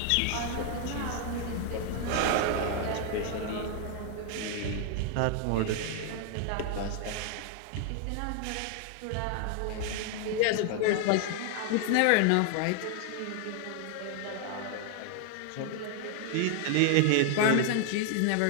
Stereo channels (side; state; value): both; different; correlation 0.00